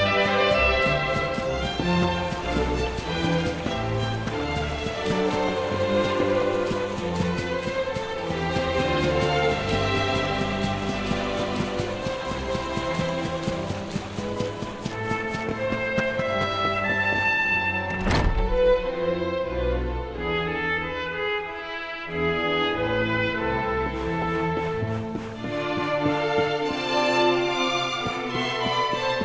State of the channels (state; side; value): identical; both; correlation 1.00